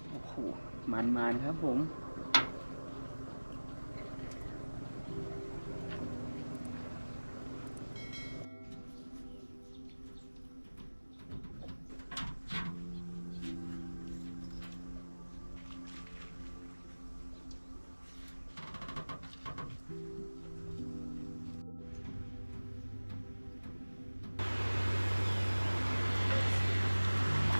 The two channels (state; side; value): inverted; both; correlation -1.00